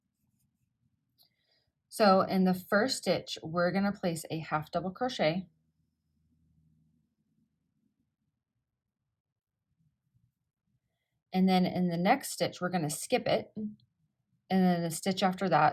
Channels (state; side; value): identical; both; correlation 1.00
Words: So in the first stitch, we're going to place a half double crochet. And then in the next stitch, we're going to skip it. And then the stitch after